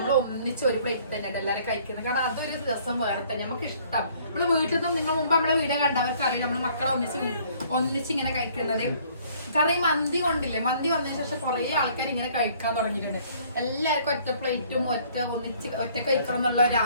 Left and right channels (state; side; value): inverted; both; correlation -0.59